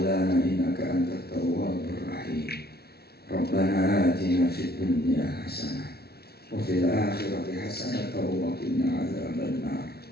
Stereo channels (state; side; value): late; right; 0.46 ms